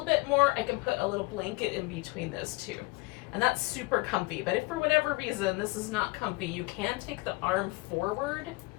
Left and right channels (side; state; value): right; quieter; 24.2 dB